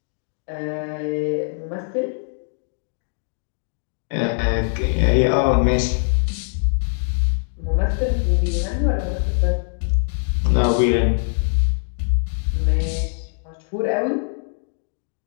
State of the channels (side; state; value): right; silent; digital silence